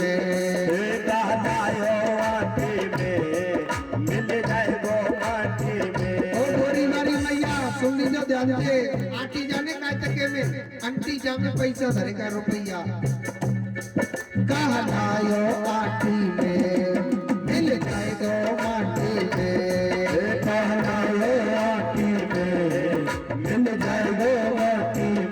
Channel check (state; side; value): identical; both; correlation 1.00